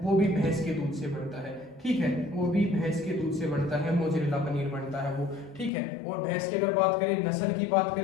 वो भी भैंस के दूध से बनता है। ठीक है, वो भी भैंस के दूध से बनता है, मोजरेला पनीर बनता है वो। ठीक है, और भैंस की अगर बात करें, नस्ल की बात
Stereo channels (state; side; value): drops out; right; at 5.7 s